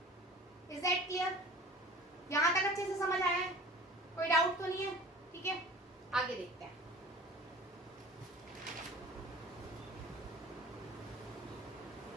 Is that clear? यहां तक अच्छे से समझ आया है, कोई डाउट तो नहीं है, ठीक है। आगे देखते हैं।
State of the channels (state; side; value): normal; both; correlation 0.43